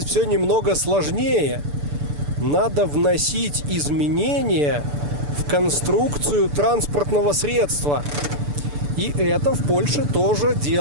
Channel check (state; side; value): late; left; 6.9 ms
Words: все немного сложнее. Надо вносить изменения в конструкцию транспортного средства. И это в Польше тоже